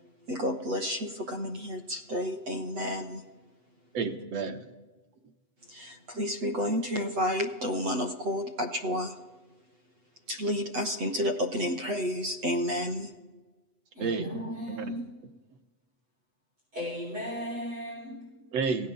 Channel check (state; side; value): late; left; 8.0 ms